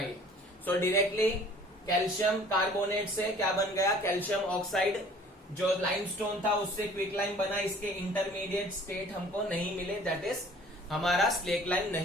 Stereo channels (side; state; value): both; normal; correlation 0.51